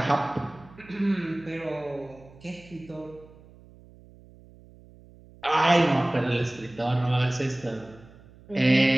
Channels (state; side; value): noise; right; hum, 23 dB below the sound